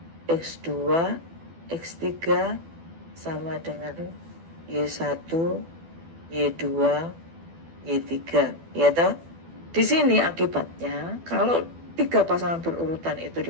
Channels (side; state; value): left; late; 12 ms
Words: X2, X3 sama dengan Y1, Y2, Y3. Ya toh? Di sini akibatnya kalau tiga pasangan berurutan itu